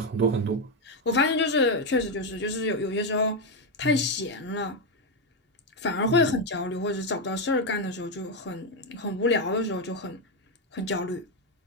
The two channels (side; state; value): both; normal; correlation 0.06